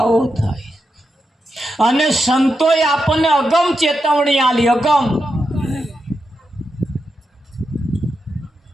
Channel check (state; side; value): normal; both; correlation 0.86